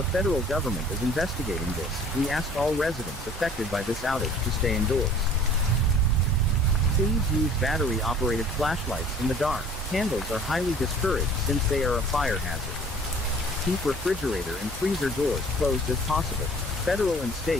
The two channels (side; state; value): both; normal; correlation 0.50